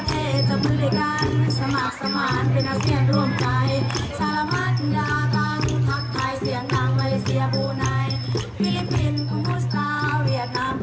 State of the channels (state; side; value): identical; both; correlation 1.00